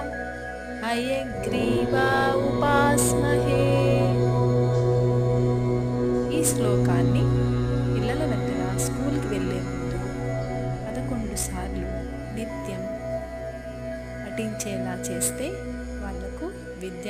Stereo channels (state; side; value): identical; both; correlation 1.00